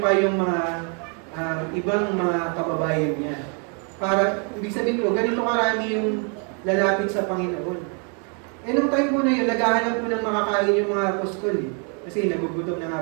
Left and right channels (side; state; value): left; quieter; 38.9 dB